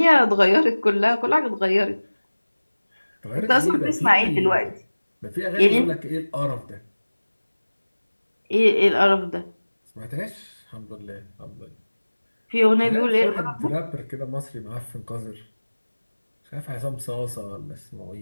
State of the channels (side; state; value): both; inverted; correlation -1.00